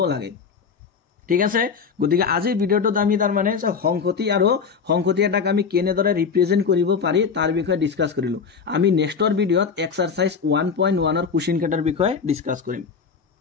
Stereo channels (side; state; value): right; quieter; 5.9 dB